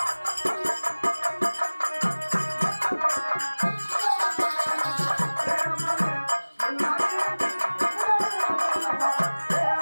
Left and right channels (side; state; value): both; inverted; correlation -1.00